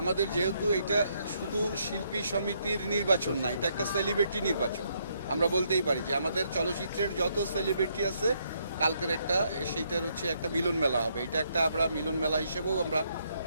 আমাদের যেহেতু এটা শুধু শিল্পী সমিতির নির্বাচন না, এটা একটা সেলিব্রিটি নির্বাচন। আমরা বলতেই পারি যে আমাদের চলচ্চিত্রের যত সেলিব্রিটি আছে কালকের সেইটার একটা মিলন মেলা হবে। এটা একটা আমরা মিলন মেলা হিসেবেও আমরা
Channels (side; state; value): both; inverted; correlation -0.74